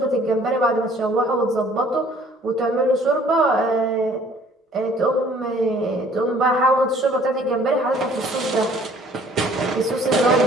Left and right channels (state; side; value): normal; both; correlation 0.56